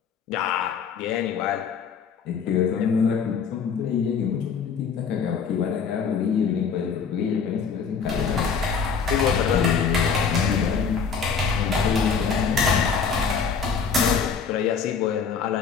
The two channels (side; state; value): right; quieter; 6.1 dB